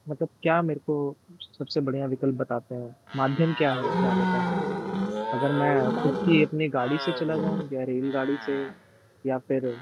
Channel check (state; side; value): identical; both; correlation 1.00